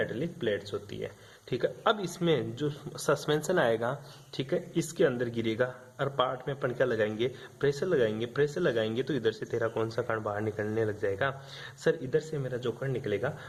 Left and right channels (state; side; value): identical; both; correlation 1.00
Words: प्लेट्स होती है, ठीक है। अब इसमें जो सस्पेंशन आएगा, ठीक है, इसके अंदर गिरेगा और पार्ट में अपन क्या लगाएंगे? प्रेशर लगाएंगे। प्रेशर लगाएंगे तो इधर से तेरा कौन सा कण बाहर निकलने लग जाएगा? सर इधर से मेरा जो कण निकलेगा